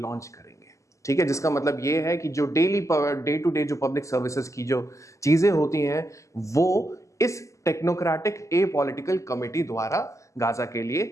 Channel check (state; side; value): late; right; 0.15 ms